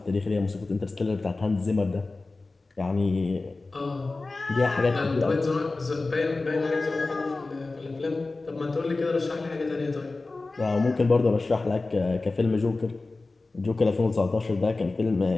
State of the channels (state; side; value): quieter; right; 3.4 dB